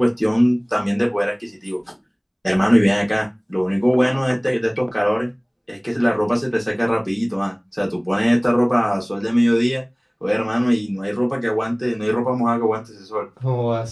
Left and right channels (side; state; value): both; identical; correlation 1.00